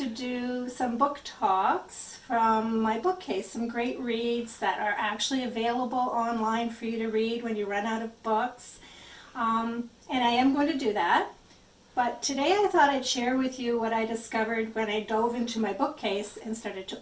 do some book talks from my bookcase, some great reads that are actually available online for you to read when you run out of books. And I am going to do that. But today I thought I'd share with you what I discovered when I dove into my bookcase and started to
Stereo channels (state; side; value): identical; both; correlation 1.00